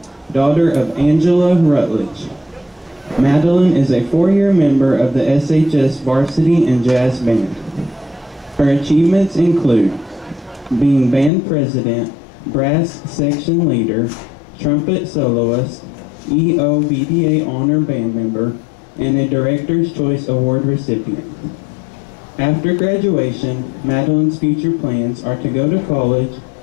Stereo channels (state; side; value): drops out; right; at 11.3 s